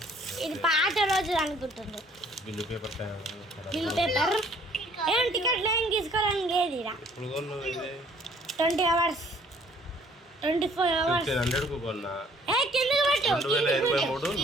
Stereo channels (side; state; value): both; normal; correlation 0.59